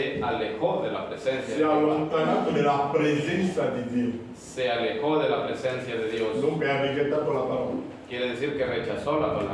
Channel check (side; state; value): both; identical; correlation 1.00